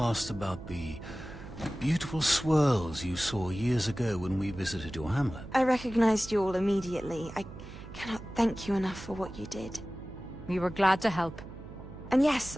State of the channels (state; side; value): noise; right; hum, 14 dB below the sound